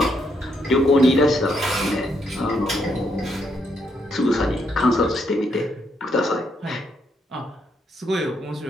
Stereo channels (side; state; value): both; normal; correlation 0.76